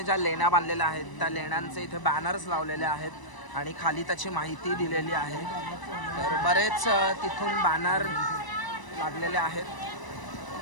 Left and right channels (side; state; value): right; late; 1.0 ms